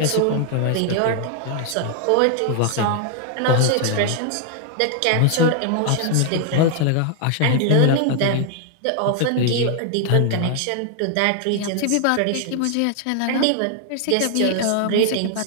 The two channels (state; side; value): different; both; correlation 0.00